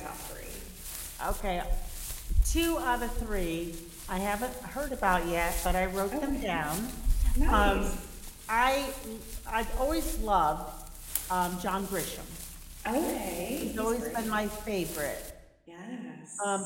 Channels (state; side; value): identical; both; correlation 1.00